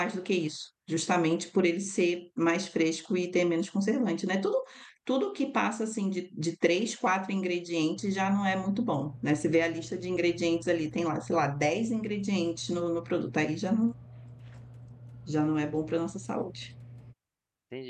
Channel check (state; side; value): identical; both; correlation 1.00